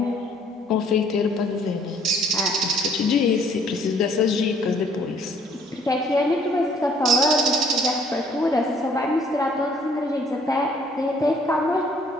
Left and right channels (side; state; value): both; normal; correlation 0.61